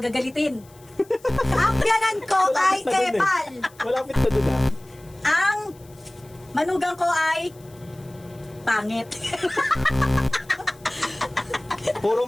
Ang biyanan ko ay Malapit na dun, eh. epal. Malapit na dun, ah. Ang manugang ko ay pangit. Puro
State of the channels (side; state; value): left; noise; hiss, 27 dB below the sound